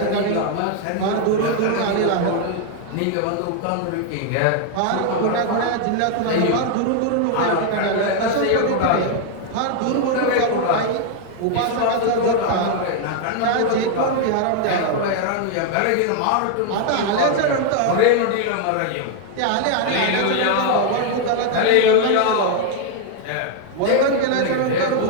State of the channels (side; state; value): both; different; correlation 0.00